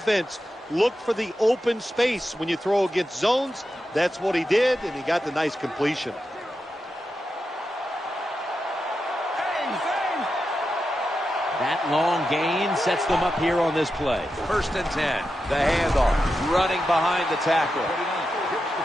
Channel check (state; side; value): normal; both; correlation 0.89